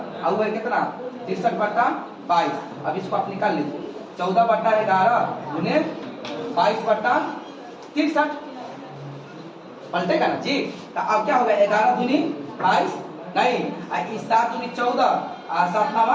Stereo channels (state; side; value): identical; both; correlation 1.00